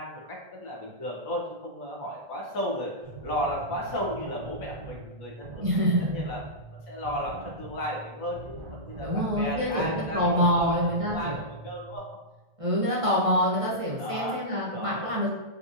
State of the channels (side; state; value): left; late; 1.5 ms